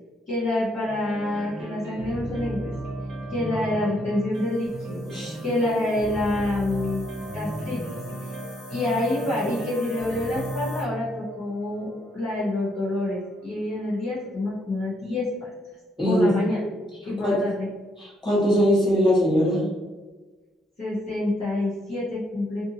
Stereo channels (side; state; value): both; normal; correlation 0.73